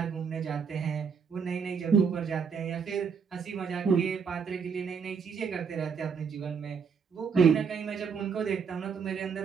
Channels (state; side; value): quieter; left; 6.2 dB